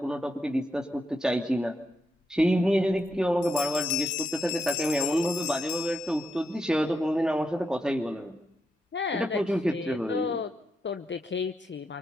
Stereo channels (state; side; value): normal; both; correlation 0.82